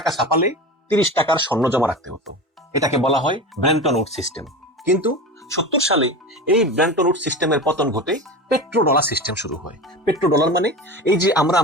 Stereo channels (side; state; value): both; normal; correlation 0.28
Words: ছাপালে 30 টাকার স্বর্ণ জমা রাখতে হতো। এটাকে বলা হয় ব্রেন্টন উড সিস্টেম। কিন্তু 70 সালে এই ব্রেন্টন উড সিস্টেমের পতন ঘটে পেট্রো ডলার সিস্টেম শুরু হয়। পেট্রো ডলার মানে এই যে আমরা